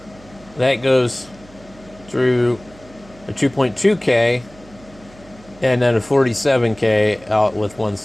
that goes through a 2.2K and then a 47K out with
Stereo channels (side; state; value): right; noise; hum, 24 dB below the sound